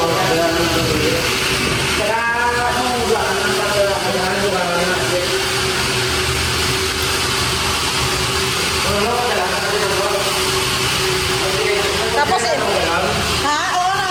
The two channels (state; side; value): identical; both; correlation 1.00